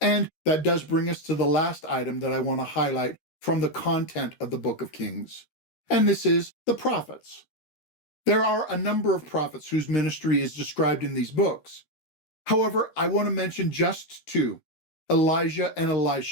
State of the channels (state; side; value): late; right; 13 ms